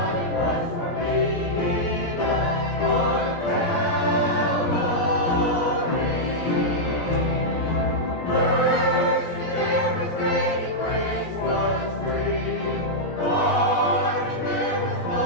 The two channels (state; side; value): late; right; 16 ms